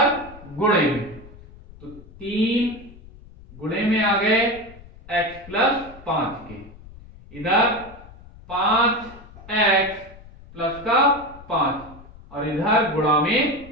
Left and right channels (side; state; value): left; noise; rumble, 20 dB below the sound